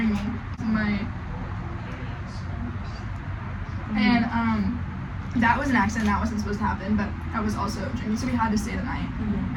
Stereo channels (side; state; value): both; identical; correlation 1.00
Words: me. And that was an accident. That wasn't supposed to happen, but I was also drinking, so we had to stay the night.